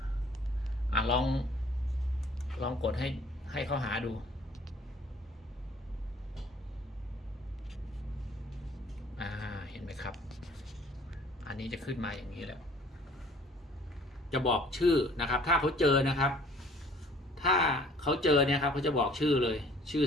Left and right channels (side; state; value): both; normal; correlation 0.54